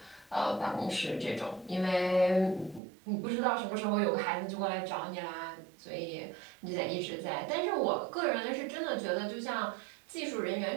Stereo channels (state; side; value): drops out; left; at 2.8 s